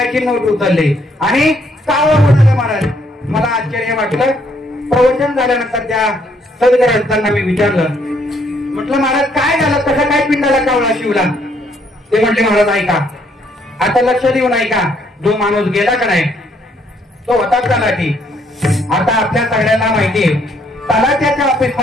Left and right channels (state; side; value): normal; both; correlation 0.69